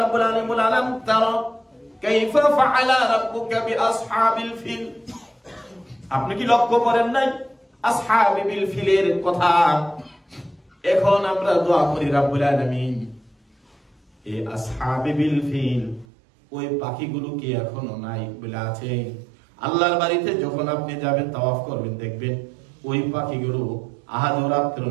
আলামিন বলেন আলাম তারা কাইফা ফাআলা রাব্বুকা বিআসহাবিল ফিল। আপনি কি লক্ষ্য করেন নাই আসহাবিল ফিলের কথা? এখন আমরা দোয়া করি রাব্বুল আলামিন এই আসহাবিল ফিল ওই পাখিগুলো কি এখনো নাই বলে আছে? আল্লাহর বাড়িতে যখন আপনি যাবেন তাওয়াফ করবেন, দেখবেন ওই পাখিগুলো আহাদরাত্র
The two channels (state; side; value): drops out; left; at 16.1 s